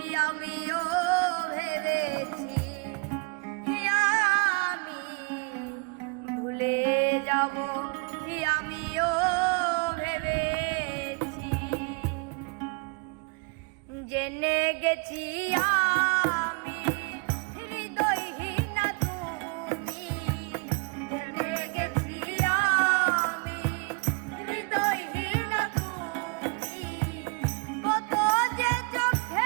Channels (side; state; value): left; quieter; 32.8 dB